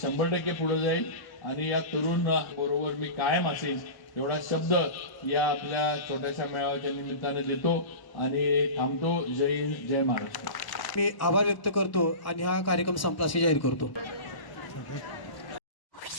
पुढे जाईल आणि या तरुण बरोबर मी कायम असेल एवढा शब्द या आपल्या छोट्याशा मेळाव्याच्या निमित्ताने देतो आणि थांबतो. जय हिंद, जय महाराष्ट्र. मी आभार व्यक्त करतो आणि हा कार्यक्रम संपला असे जाहीर करतो.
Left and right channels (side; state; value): right; late; 1.0 ms